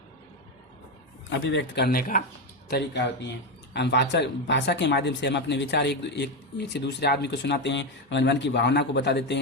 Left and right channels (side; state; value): both; normal; correlation 0.10